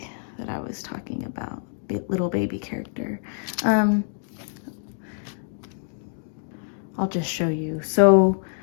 that I was talking about, the little baby character. I'll just show you. So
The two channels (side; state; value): right; silent; 61 dB below the other